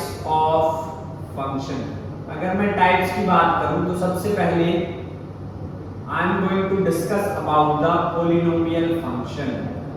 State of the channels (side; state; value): both; identical; correlation 1.00